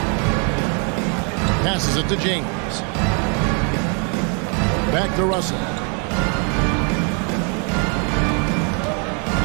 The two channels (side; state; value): left; quieter; 36.4 dB